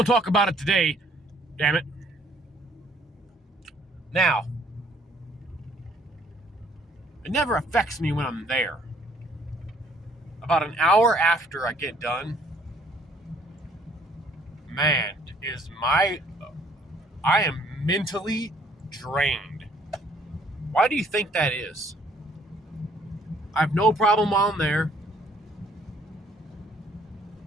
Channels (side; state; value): both; normal; correlation 0.61